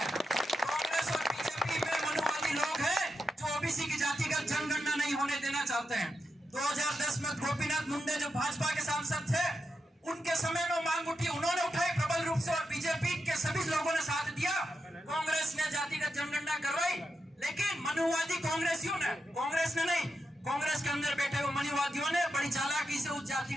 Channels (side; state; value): both; normal; correlation 0.87